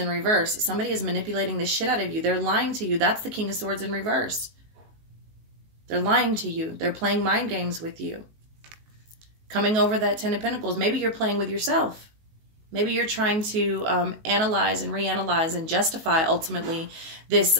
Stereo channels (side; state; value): left; late; 19 ms